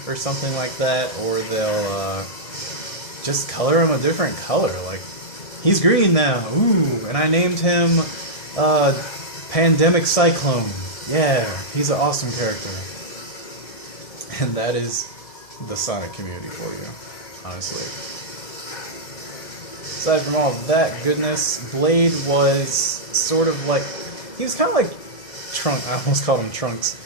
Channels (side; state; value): right; late; 1.7 ms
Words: or something like that, or they'll just color him a different color. Like, he's green now, ooh, and I named him Pandemic Cyclone. Yeah, he's an awesome character. And that is the Sonic community for you, honestly. Aside from all of that goodness, Blade was sort of like, he was kind of like Trunks. I almost called him Trunks.